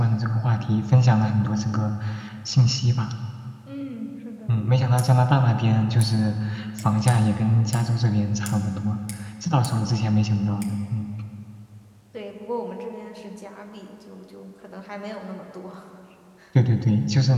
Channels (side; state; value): both; identical; correlation 1.00